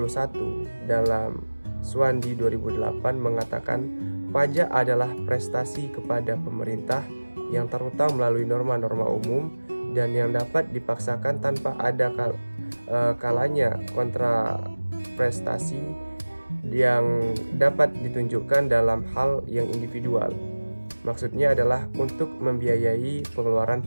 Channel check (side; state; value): both; inverted; correlation -1.00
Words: dalam Swandi 2008 mengatakan pajak adalah prestasi kepada pemerintah yang terutang melalui norma-norma umum dan yang dapat dipaksakan tanpa ada kalanya kontra prestasi yang dapat ditunjukkan dalam hal yang individual. Maksudnya adalah untuk membiayai pengeluaran